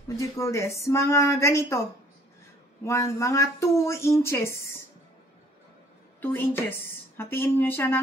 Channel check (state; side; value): normal; both; correlation 0.58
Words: what do you call this? Mga ganito. Mga 2 inches. 2 inches. Hatiin nyo siya